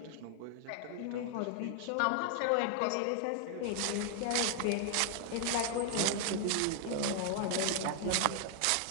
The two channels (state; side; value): different; both; correlation 0.00